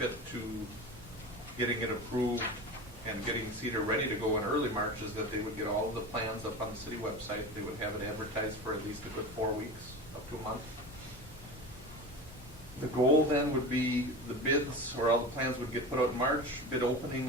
to getting it approved and getting Cedar ready to go in early March is that they would get all of the plans up on the city website. They would have it advertised for at least a good 4 weeks, up to a month. The goal then would be the bids, or all the plans would get put out in March. Bid opening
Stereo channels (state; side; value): normal; both; correlation 0.29